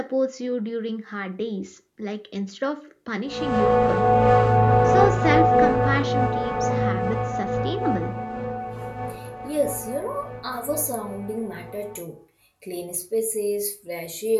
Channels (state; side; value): identical; both; correlation 1.00